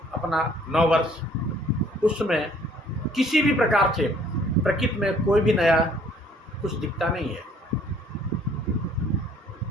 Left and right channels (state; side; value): normal; both; correlation 0.59